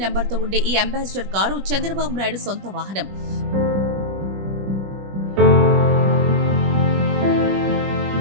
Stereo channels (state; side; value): late; left; 21 ms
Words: నెంబర్తో ఉండే ఈ అంబాసిడర్ కారు చంద్రబాబు నాయుడు సొంత వాహనం.